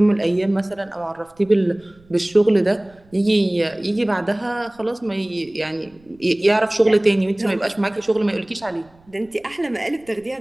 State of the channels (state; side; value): noise; right; rumble, 30 dB below the sound